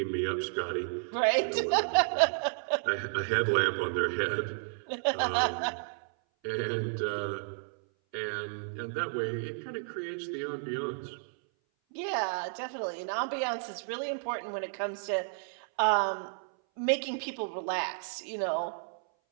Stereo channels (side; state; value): left; silent; 56 dB below the other